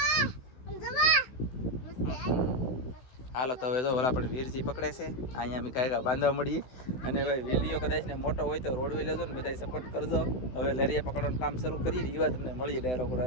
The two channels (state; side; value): late; right; 16 ms